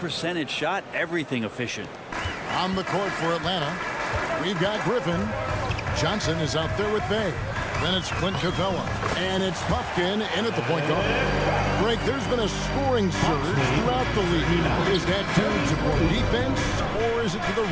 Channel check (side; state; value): both; identical; correlation 1.00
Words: shot? Everything efficient. On the court for Atlanta, we've got Griffin. Johnson is out there with Bay. Then it's Clint Capella. And it's Puffkin in at the point guard. Greg, there's been a scoring surge throughout the league. Is that due to more defense, or is it to the